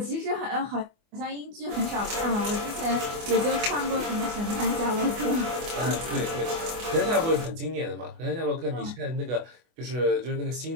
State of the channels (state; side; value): late; left; 24 ms